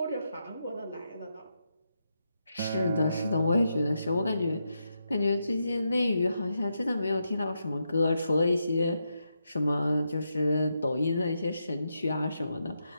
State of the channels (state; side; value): inverted; both; correlation -0.84